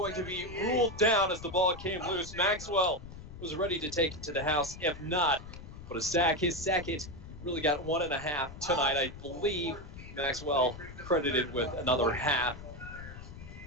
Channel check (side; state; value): left; noise; rumble, 13 dB below the sound